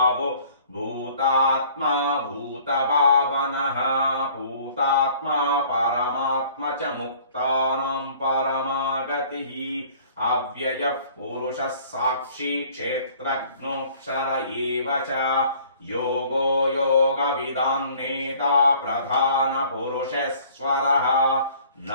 భూతాత్మా భూతభావనః భూతాత్మా పరమాత్మ చ ముక్తానాం పరమాగతిః అవ్యయః పురుషः సాక్షి క్షేత్రజ్ఞోక్షర ఏవ చ యోగో యోగవిదాం నేతా ప్రధాన పురుషేశ్వరః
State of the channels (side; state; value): both; inverted; correlation -0.53